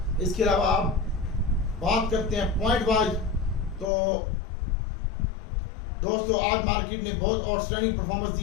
इसके अलावा आप बात करते हैं पॉइंट वाइज, तो दोस्तों आज मार्केट ने बहुत आउटस्टैंडिंग परफॉर्मेंस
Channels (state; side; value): drops out; right; at 3.9 s